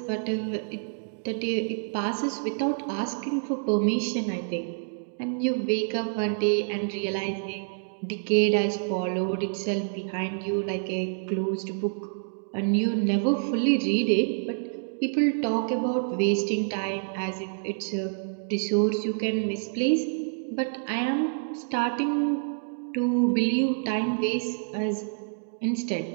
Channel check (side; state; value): left; silent; digital silence